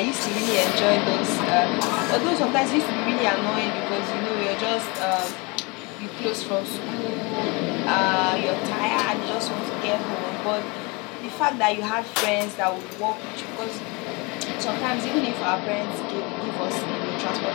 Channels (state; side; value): quieter; right; 28.1 dB